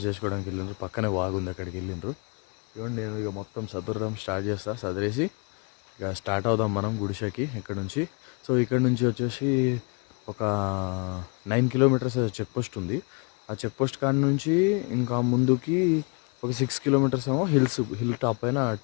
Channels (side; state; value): right; quieter; 33.6 dB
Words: చేసుకోవడానికి వెళ్ళిండ్రు. పక్కనే వాగుంది, అక్కడికి వెళ్ళిండ్రు. ఇవ్వండి నేను ఇక మొత్తం సదరడం స్టార్ట్ చేస్తా. సదరేసి ఇక స్టార్ట్ అవుదాం మనం గుడిసెకి ఇక్కడ నుంచి. సో ఇక్కడ నుంచి వచ్చేసి ఒక 9 కిలోమీటర్స్ చెక్ పోస్ట్ ఉంది. ఆ చెక్ పోస్ట్ కాడ నుంచి ఇంకా ముందుకి ఒక 6 కిలోమీటర్స్ ఏమో హిల్ టాప్ పైన